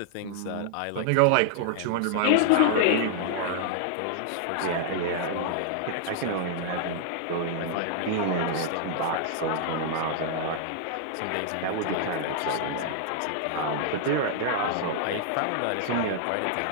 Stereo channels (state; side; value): different; both; correlation -0.01